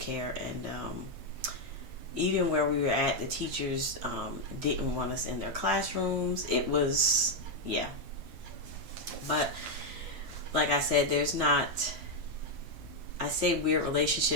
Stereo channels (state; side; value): late; left; 9.5 ms